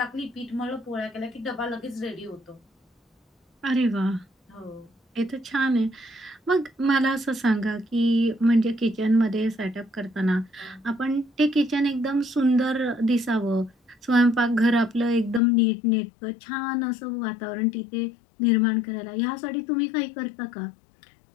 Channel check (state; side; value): drops out; right; at 15.4 s